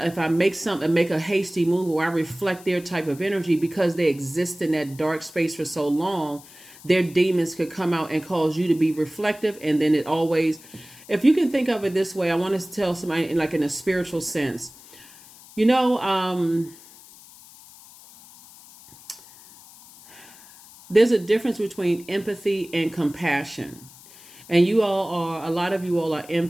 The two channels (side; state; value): left; noise; hiss, 21 dB below the sound